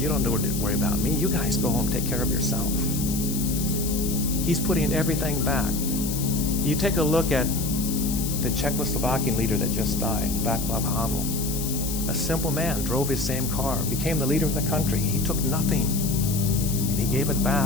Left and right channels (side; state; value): left; noise; hiss, 6 dB below the sound